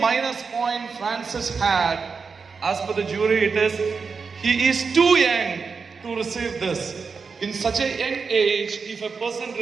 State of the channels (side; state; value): left; quieter; 5.2 dB